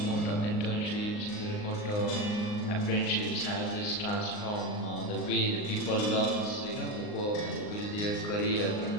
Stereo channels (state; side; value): late; right; 39 ms